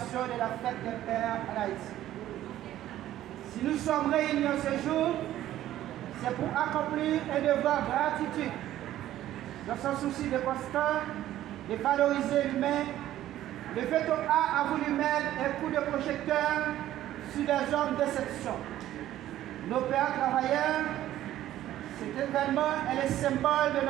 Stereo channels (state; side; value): quieter; left; 13.3 dB